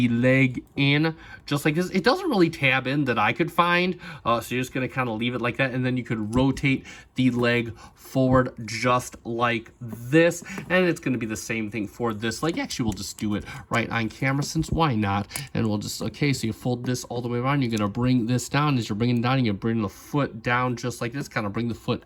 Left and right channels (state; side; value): identical; both; correlation 1.00